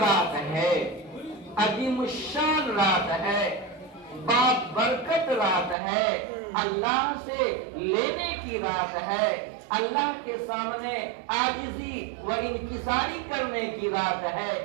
ہے، عظیم الشان رات ہے، برکت رات ہے، اللہ سے لینے کی رات ہے، اللہ کے سامنے عاجزی و انکساری کرنے کی رات ہے،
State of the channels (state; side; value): drops out; left; at 5.8 s